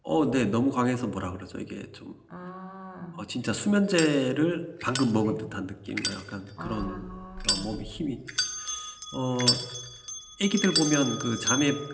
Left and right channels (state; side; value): identical; both; correlation 1.00